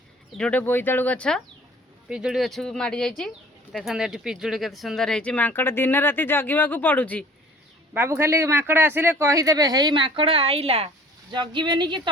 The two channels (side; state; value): both; normal; correlation 0.49